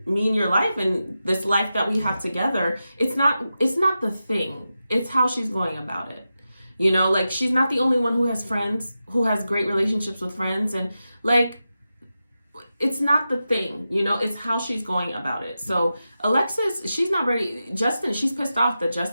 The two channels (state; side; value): inverted; both; correlation -0.91